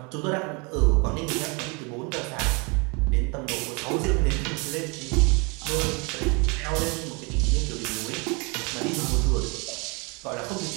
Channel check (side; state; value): left; quieter; 29.8 dB